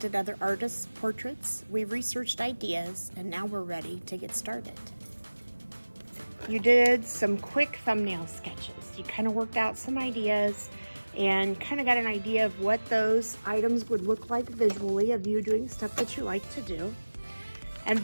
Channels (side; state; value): both; inverted; correlation -1.00